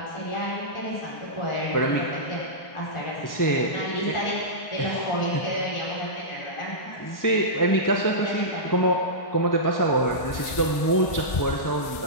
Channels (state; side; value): late; right; 1.6 ms